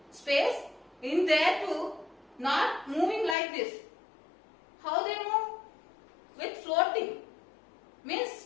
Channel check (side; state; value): right; drops out; at 3.4 s